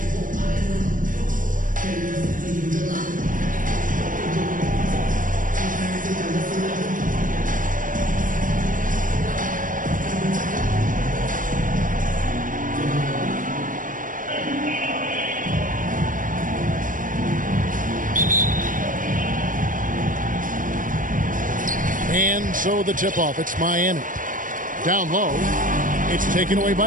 so the tip-off, it's Miami. Down low, it's taken away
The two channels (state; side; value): late; left; 0.39 ms